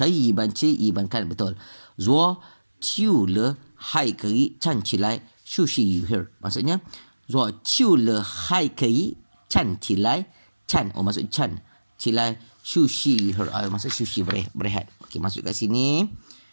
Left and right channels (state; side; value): inverted; both; correlation -1.00